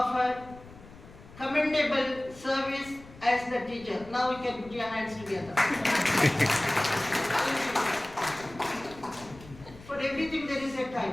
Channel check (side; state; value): left; noise; rumble, 20 dB below the sound